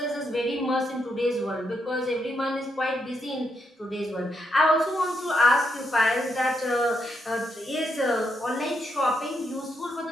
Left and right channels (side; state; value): both; normal; correlation 0.79